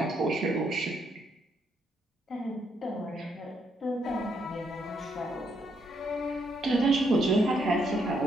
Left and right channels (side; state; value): both; normal; correlation 0.75